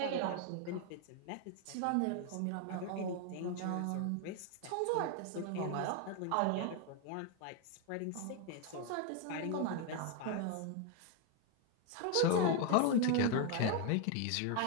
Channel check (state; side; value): different; both; correlation 0.01